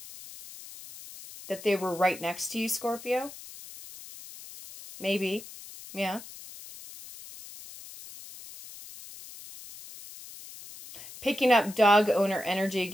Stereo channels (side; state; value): left; noise; hiss, 16 dB below the sound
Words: that they were right next to you, Scorpio? Maybe. Yeah. Picking up dog owner energy